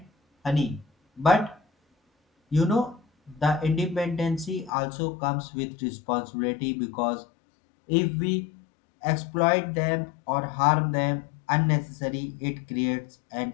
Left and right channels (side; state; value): right; drops out; at 4.7 s